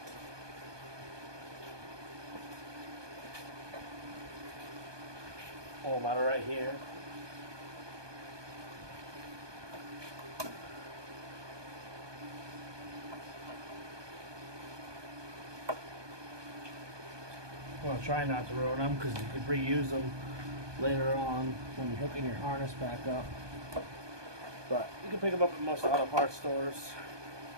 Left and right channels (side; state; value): left; late; 1.2 ms